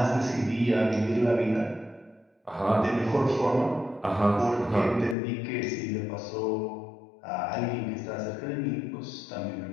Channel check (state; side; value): drops out; right; at 5.2 s